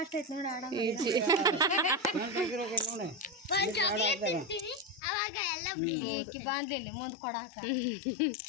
ಬಾಂದ್ಲಿ ಮುಂದ್ ಕೊಡಾಕ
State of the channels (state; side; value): drops out; right; at 5.0 s